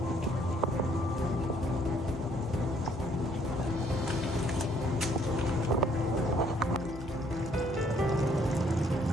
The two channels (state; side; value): normal; both; correlation 0.65